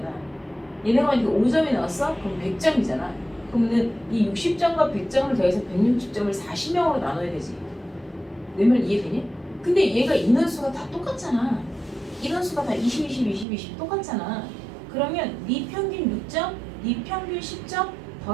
얘네가 만약에 5점이 나왔어? 그럼 100점이잖아. 그러면 이 60점과 100점을 더해서 160점을 40명으로 나눠야 되지. 내 말 이해되니? 근데 얘가 인원수가 다 똑같잖아. 인원수가 다 20, 20, 20, 20 똑같잖아. 그러면 네 평균 6점, 네 평균 10점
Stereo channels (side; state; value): left; drops out; at 13.5 s